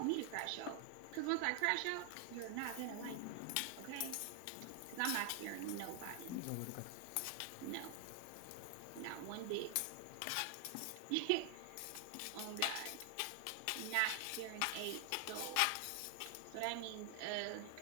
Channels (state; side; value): different; both; correlation 0.00